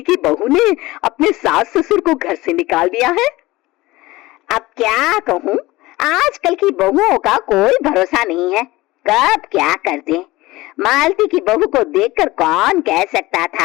की बहू ने अपने सास ससुर को घर से निकाल दिया है। अब क्या कहूँ, आजकल की बहुओं का कोई भरोसा नहीं है, कब क्या कर दे। मालती की बहू को देखकर कौन कह सकता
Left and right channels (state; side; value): quieter; right; 19.3 dB